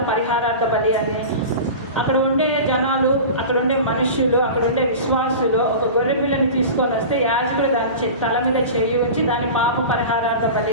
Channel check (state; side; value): inverted; both; correlation -0.32